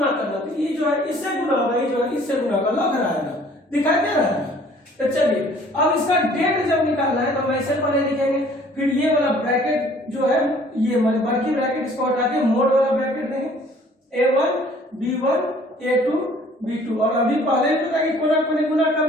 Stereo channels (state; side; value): normal; both; correlation 0.55